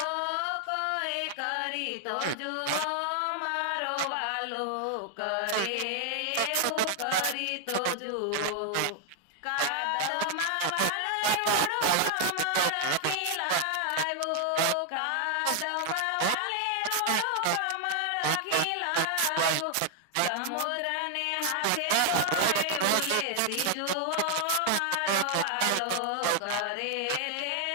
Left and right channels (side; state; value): both; different; correlation 0.00